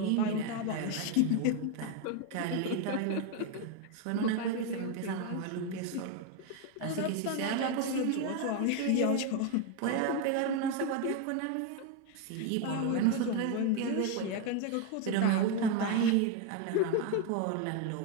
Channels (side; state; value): both; different; correlation 0.01